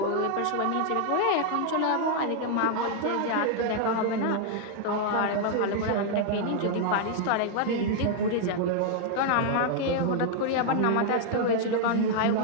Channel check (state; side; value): different; both; correlation 0.00